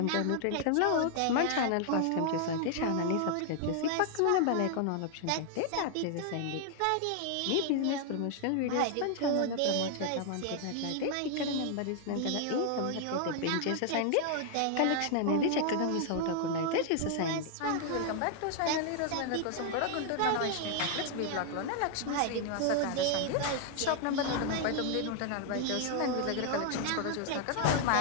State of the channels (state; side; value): different; both; correlation 0.00